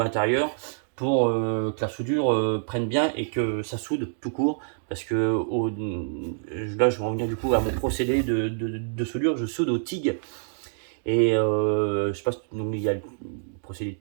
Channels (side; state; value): left; silent; digital silence